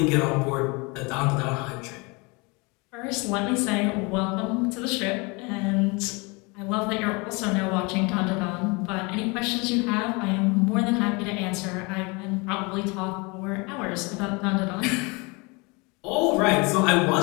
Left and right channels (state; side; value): quieter; right; 28.2 dB